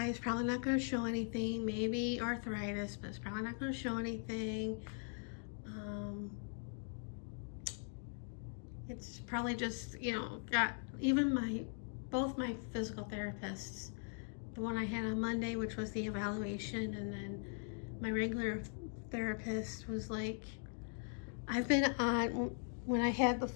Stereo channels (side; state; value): right; silent; 51 dB below the other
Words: is probably not going to show anything, maybe arthritis, but it's probably not going to show anything. It's probably just, got even both my physical therapists, the one I had on Monday, which was the evaluation, and then my regular therapist was like, when I had the